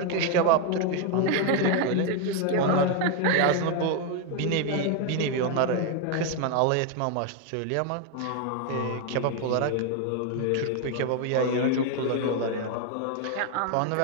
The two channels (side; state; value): both; different; correlation 0.01